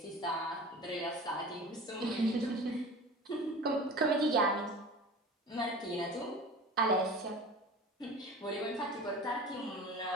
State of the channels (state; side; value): normal; both; correlation 0.37